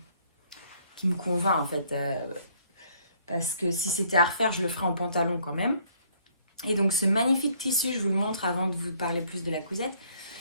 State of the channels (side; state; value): both; inverted; correlation -0.64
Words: convainc en fait, parce que si c'était à refaire, je le ferais en pantalon quand même. Et donc, ce magnifique tissu, je vous le montre avant de vous parler plus de la cousette.